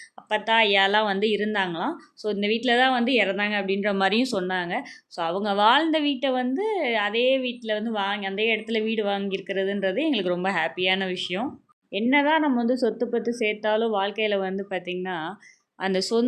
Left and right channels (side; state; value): both; identical; correlation 1.00